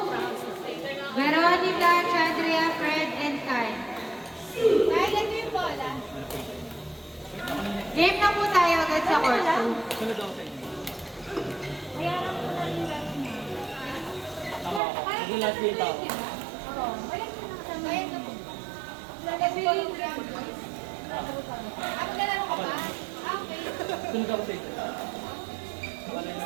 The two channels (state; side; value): drops out; left; at 14.8 s